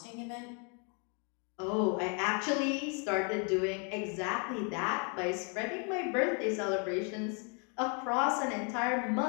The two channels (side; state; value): right; quieter; 37.9 dB